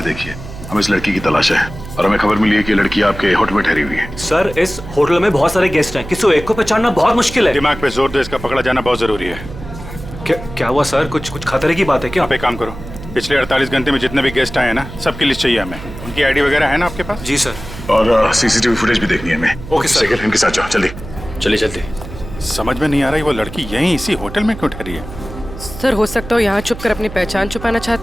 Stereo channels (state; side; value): noise; right; hum, 13 dB below the sound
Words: देखिए, हमें इस लड़की की तलाश है और हमें खबर मिली है कि लड़की आपके होटल में ठहरी हुई है। सर, इस होटल में बहुत सारे गेस्ट हैं, किसी एक को पहचानना बहुत मुश्किल है। दिमाग पे जोर दो, इसका पकड़ा जाना बहुत जरूरी है। क्या हुआ सर? कुछ खतरे की बात है क्या? आप एक काम करो, पिछले 48 घंटे में जितने भी गेस्ट आए हैं ना, सबकी लिस्ट चाहिए हमें। उनकी आईडी वगैरह है ना आपके पास? जी सर। और सीसीटीवी फुटेज भी देखनी है हमें। Okay sir. इनके साथ जाओ, जल्दी। चलिए जल्दी। समझ में नहीं आ रही वो लड़की यहीं इसी होटल में क्यों ठहरी है? सर हो सकता हो यहाँ छुप कर अपनी पहचान छुपाना